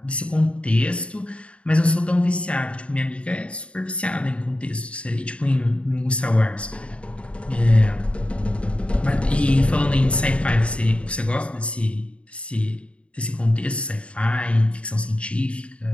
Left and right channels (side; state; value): right; late; 0.060 ms